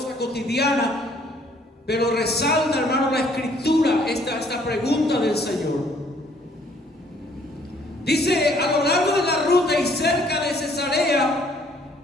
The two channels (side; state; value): both; normal; correlation 0.62